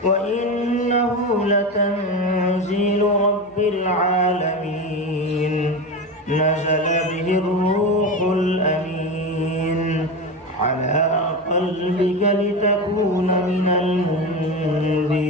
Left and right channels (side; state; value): both; normal; correlation 0.21